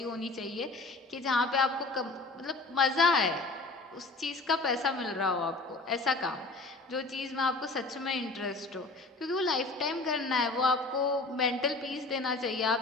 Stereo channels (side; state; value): right; quieter; 3.4 dB